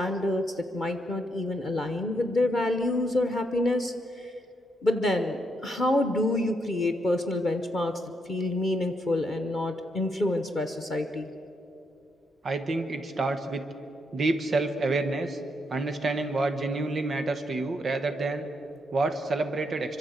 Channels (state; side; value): normal; both; correlation 0.78